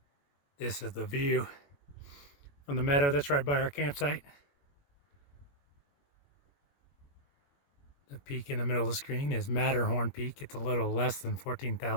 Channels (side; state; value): right; late; 21 ms